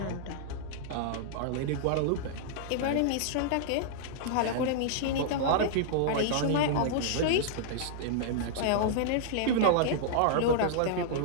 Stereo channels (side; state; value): both; different; correlation -0.01